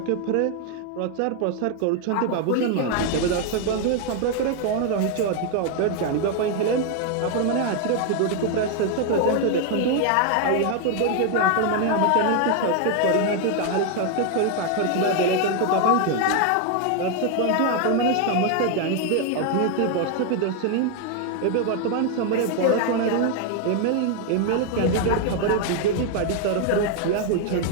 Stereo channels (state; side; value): different; both; correlation 0.01